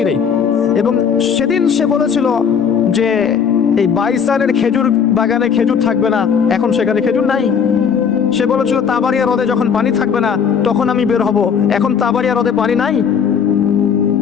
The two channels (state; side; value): quieter; right; 7.0 dB